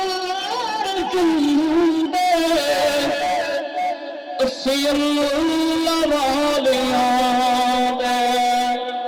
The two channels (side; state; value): both; identical; correlation 1.00